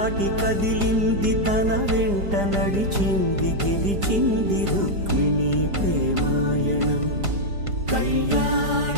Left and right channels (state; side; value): late; left; 5.0 ms